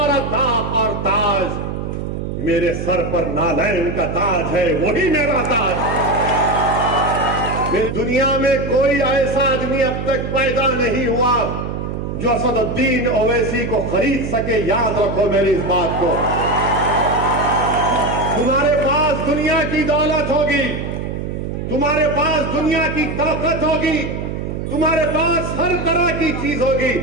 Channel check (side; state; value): right; noise; hum, 5 dB below the sound